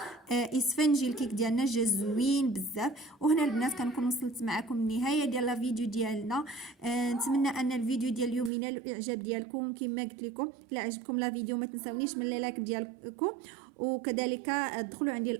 اسفنجي الكيك ديالنا جا زوين بزاف. وهنا البنات كنكون وصلت معكم النهايه ديال الفيديو ديالنا. نتمنى ان الفيديو ديال اليوم ينال الاعجاب ديالكم. كما قلت لكم الا عجبكم لا فيديو ما تنساونيش من لايك ديالكم، وكذلك ادخلوا عندي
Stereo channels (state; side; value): drops out; left; at 8.5 s